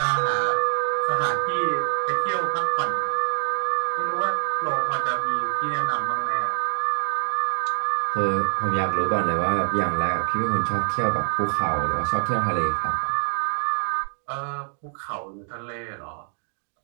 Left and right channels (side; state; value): left; silent; digital silence